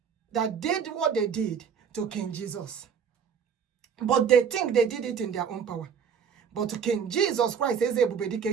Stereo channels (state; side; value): quieter; left; 7.1 dB